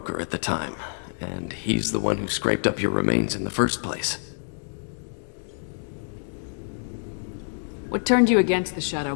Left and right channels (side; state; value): right; silent; digital silence